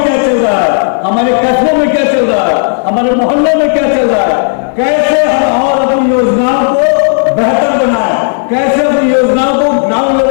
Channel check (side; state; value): right; silent; digital silence